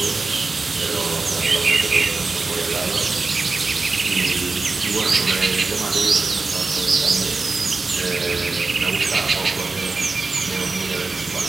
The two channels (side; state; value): left; quieter; 3.9 dB